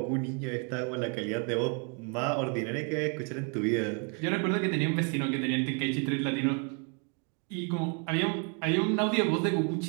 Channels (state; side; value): quieter; left; 37.5 dB